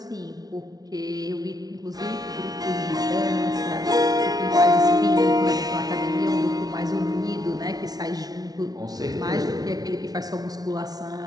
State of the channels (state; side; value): late; left; 0.19 ms